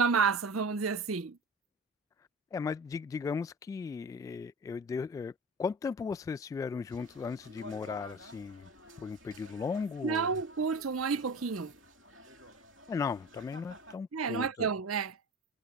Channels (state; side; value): normal; both; correlation 0.35